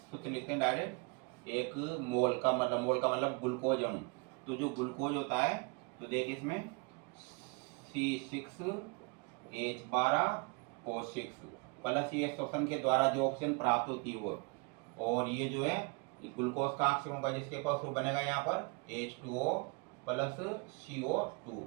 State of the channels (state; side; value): quieter; left; 30.4 dB